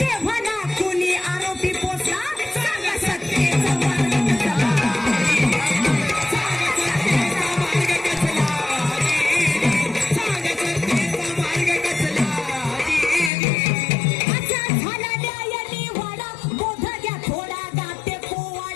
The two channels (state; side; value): drops out; right; at 13.3 s